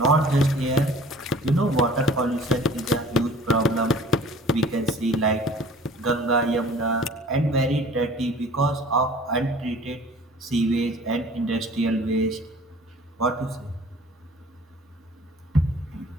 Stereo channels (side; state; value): both; normal; correlation 0.48